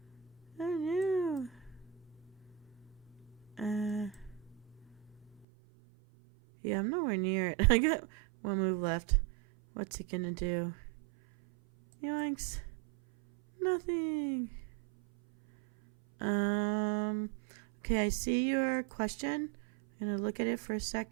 I knew. Yeah, I'm nowhere near it. I got one move left. What's it gonna do? Yoinks. Nothing. Okay, I see your question. I'm gonna look at it for a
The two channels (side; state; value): left; drops out; at 5.5 s